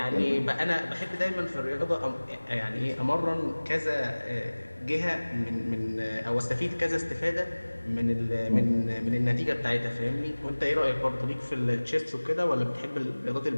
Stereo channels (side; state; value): both; inverted; correlation -1.00